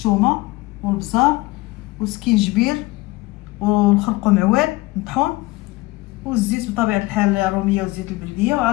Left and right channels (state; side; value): quieter; right; 21.1 dB